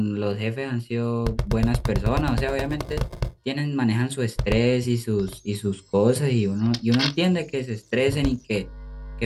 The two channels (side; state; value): both; identical; correlation 1.00